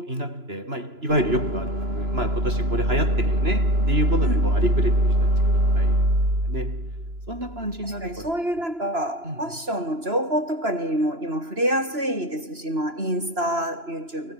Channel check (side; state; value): left; late; 3.0 ms